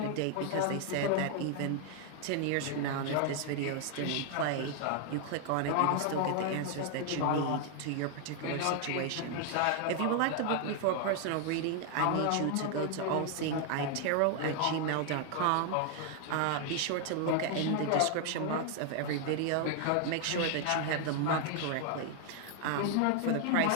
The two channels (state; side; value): different; both; correlation 0.00